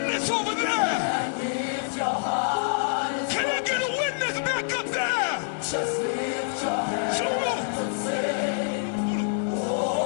over there? Can I get a witness back up there? Just lift your hands and say,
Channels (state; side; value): silent; right; digital silence